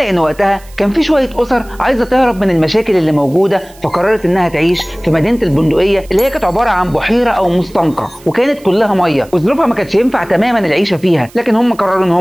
وقتها كان في شوية أسر عايزة تهرب من المشاكل اللي موجودة، فقررت إنها تعيش في مدينة البندقية اللي هي كانت عبارة عن بحيرة أو مستنقع وكانت كلها مية، وظروفها ما كانتش ينفع تماما العيشة فيها، لكن هم قرروا إن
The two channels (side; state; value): right; noise; hiss, 25 dB below the sound